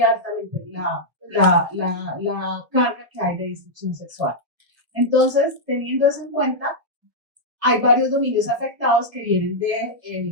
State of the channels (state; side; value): late; left; 1.5 ms